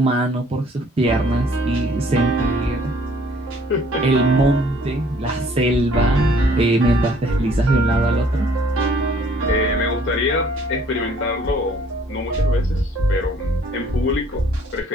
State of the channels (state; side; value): normal; both; correlation 0.58